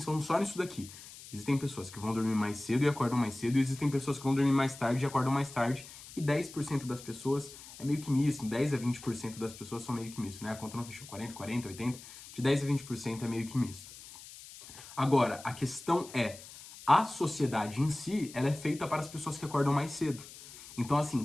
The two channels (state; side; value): noise; left; hiss, 16 dB below the sound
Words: só nisso daqui. Existem pessoas que vão dormir mais cedo e acordam mais cedo, e existem pessoas que vão dormir mais tarde e acordam mais tarde, e 10% das pessoas é meio que misto, 10 a 20% das pessoas são meio que misto, né? A conta não fechou, 40, 80, de 10 a 20% é meio que misto. Agora, a questão é, a sociedade em si, ela é feita para as pessoas que acordam mais cedo. Então,